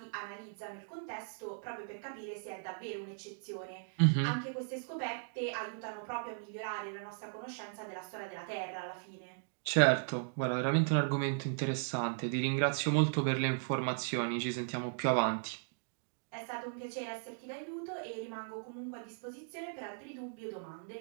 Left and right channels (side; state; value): left; silent; digital silence